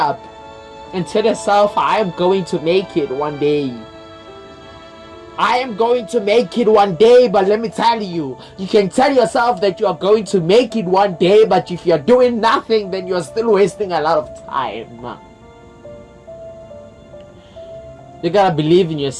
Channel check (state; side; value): identical; both; correlation 1.00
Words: and tell yourself, I am going to make it one day. I am going to make it one day. But let me tell you, you can tell yourself that you are going to make it one day, but if you're doing nothing, then you're still wasting a lot of time. You gotta believe in